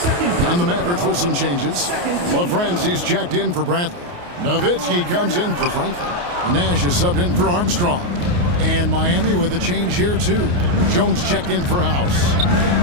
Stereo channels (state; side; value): late; left; 28 ms